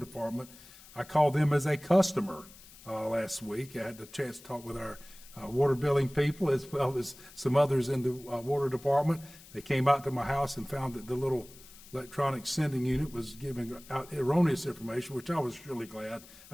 I called them as a customer last week. I had the chance to talk with our water billing people as well as some others in the water department. They came out to my house and found that the little electronic sending unit was giving out erroneous information, which I was really glad.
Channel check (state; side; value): noise; left; hiss, 21 dB below the sound